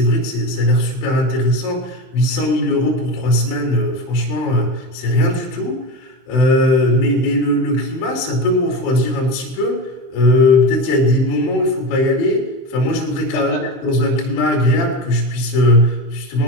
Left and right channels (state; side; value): late; right; 23 ms